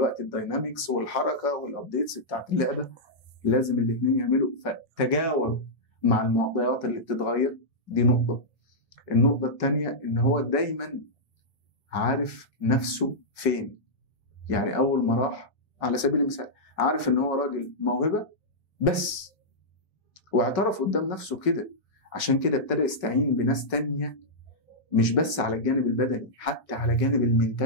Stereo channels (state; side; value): late; right; 1.6 ms